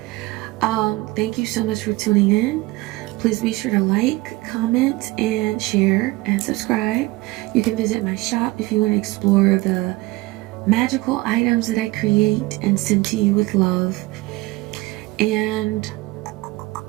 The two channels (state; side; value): quieter; left; 21.3 dB